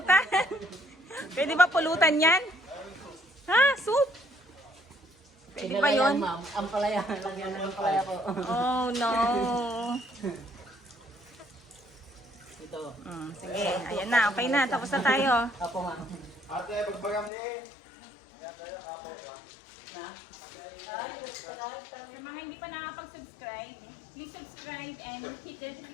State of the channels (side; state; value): right; drops out; at 17.3 s